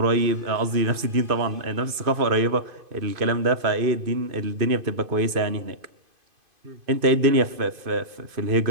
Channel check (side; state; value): left; late; 2.5 ms